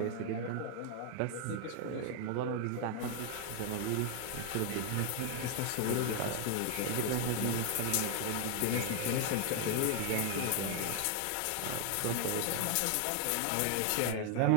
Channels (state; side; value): different; both; correlation 0.00